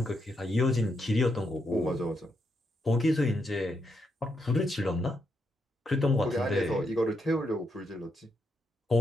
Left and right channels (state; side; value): normal; both; correlation 0.80